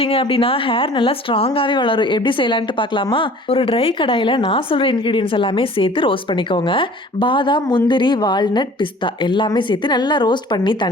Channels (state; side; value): normal; both; correlation 0.48